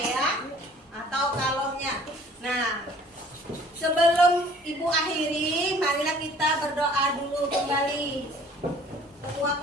ya, atau kalornya. Nah, sebelum Ibu akhiri, marilah kita berdoa dulu kembali. Ketua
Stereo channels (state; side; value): normal; both; correlation 0.53